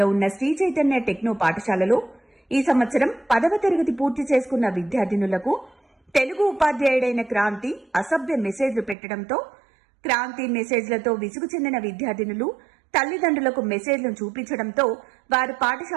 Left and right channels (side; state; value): left; drops out; at 9.0 s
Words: ఉన్న శ్రీ చైతన్య టెక్నో పాఠశాలలో ఈ సంవత్సరం 10వ తరగతి పూర్తి చేసుకున్న విద్యార్థినులకు తెలుగు ఉపాధ్యాయుడైన క్రాంతి అసభ్య మెసేజ్లు పెట్టడంతో క్రాంతి మెసేజ్లతో విసుగు చెందిన విద్యార్థినులు తల్లిదండ్రులకు మెసేజ్లను చూపించడంతో వారు